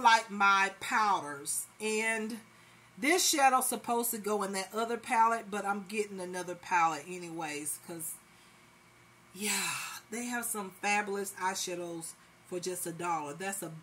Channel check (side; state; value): both; identical; correlation 1.00